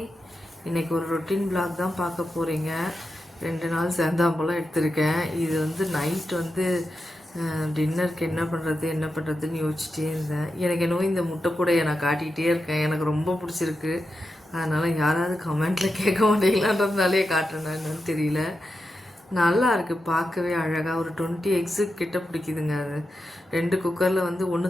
இன்றைக்கி ஒரு routine vlog தான் பார்க்க போகிறீங்க. 2 நாள் சேர்ந்தாம்பலம் எடுத்திருக்கேன். இது வந்து நைட் வந்து டின்னருக்கு என்ன பண்ணுறதுன்னு யோசிச்சிட்டே இருந்தேன். எனக்கு என்னவோ இந்த முட்டை கூடையை நான் காட்டிகிட்டே இருக்கேன். எனக்கு ரொம்ப பிடிச்சிருக்கு. அதனால் யாராவது கமெண்ட்டில் கேட்க மாட்டீங்களான்றதுனாலே காட்டுறேன்னா என்னன்னு தெரியல. நல்லா இருக்குது, பார்க்கவே அழகாக. ஒரு 20 எக்ஸு கிட்ட பிடிக்குதுங்க. அது 2 குக்கரில் வந்து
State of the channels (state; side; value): normal; both; correlation 0.89